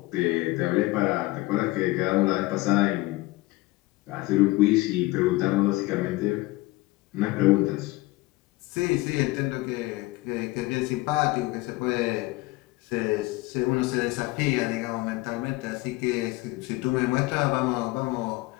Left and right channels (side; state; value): right; quieter; 20.4 dB